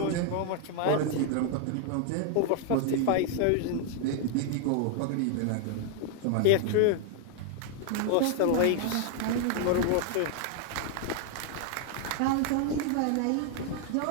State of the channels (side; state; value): both; different; correlation 0.00